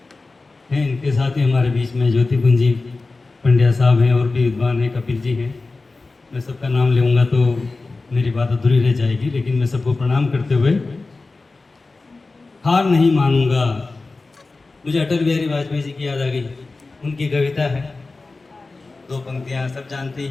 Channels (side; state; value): right; quieter; 3.6 dB